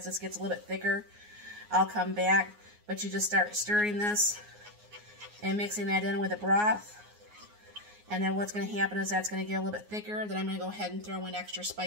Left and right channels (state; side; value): late; left; 9.6 ms